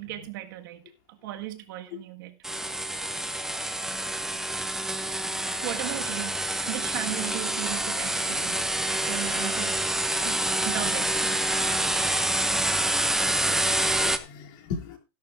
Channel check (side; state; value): both; normal; correlation 0.61